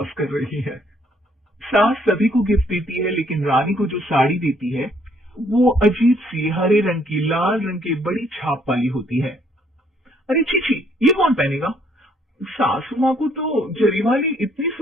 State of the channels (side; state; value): both; normal; correlation 0.66